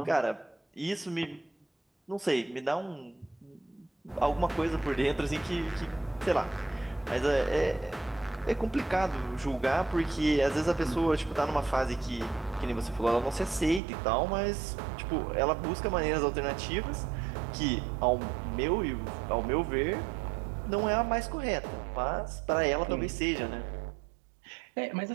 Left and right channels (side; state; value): left; drops out; at 13.8 s